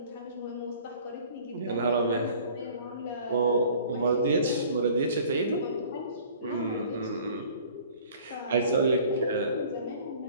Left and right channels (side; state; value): both; inverted; correlation -0.50